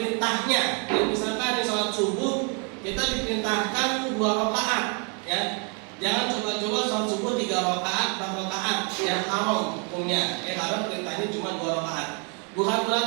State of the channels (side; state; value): left; quieter; 37.3 dB